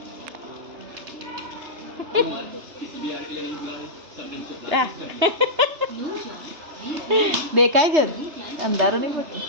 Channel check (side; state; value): left; late; 3.3 ms